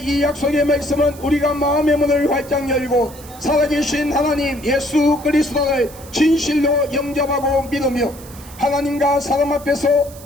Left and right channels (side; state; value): right; noise; hiss, 19 dB below the sound